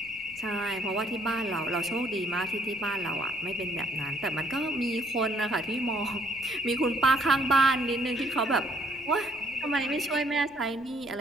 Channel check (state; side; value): noise; left; rumble, 26 dB below the sound